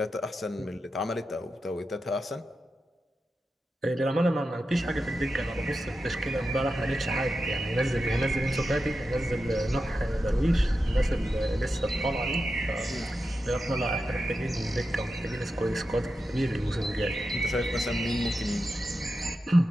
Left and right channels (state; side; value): normal; both; correlation 0.90